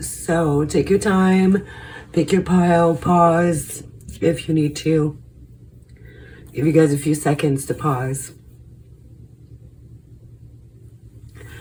So take your time, pick your pile, pause if you need to. Give you guys a few seconds to pause.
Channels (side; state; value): both; identical; correlation 1.00